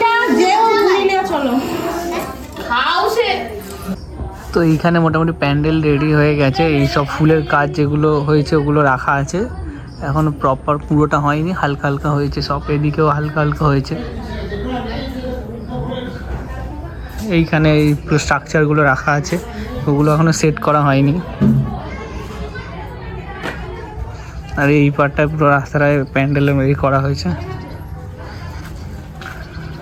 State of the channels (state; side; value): identical; both; correlation 1.00